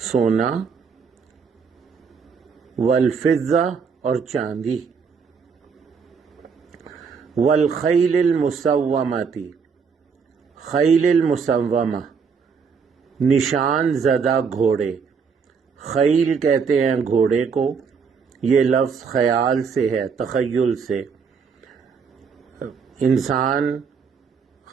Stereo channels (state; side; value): quieter; left; 5.9 dB